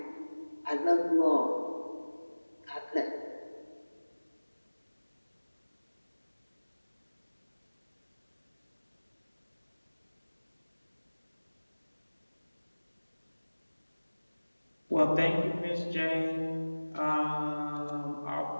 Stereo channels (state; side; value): inverted; both; correlation -1.00